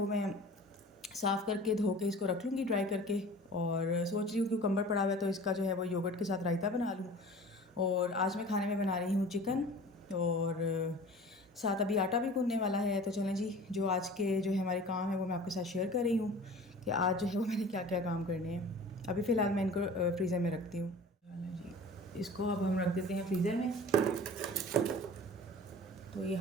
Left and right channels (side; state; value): both; normal; correlation 0.42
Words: मैं साफ़ करके धो के इसको रख लूँगी ड्राई करके। और सोच रही हूँ क्यूकम्बर पड़ा हुआ है तो इसका जो है वो योगर्ट के साथ रायता बना लूँ। और आज मैं खाने में बना रही हूँ चिकन, और साथ अभी आटा भी गूँथने वाला है। तो चलें जी, जो आज के जो है हमारे काम है वो मैं आपके साथ शेयर कर रही हूँ कि आज जो है वो मैंने क्या क्या काम करने हैं। अभी फ़िलहाल मैं इनको फ्रीज़र में रखती हूँ। चलें जी, इसको अब हम रख देते हैं फ्रीज़र में। तो ये